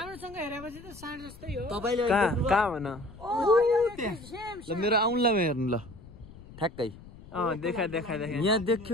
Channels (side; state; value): left; noise; rumble, 19 dB below the sound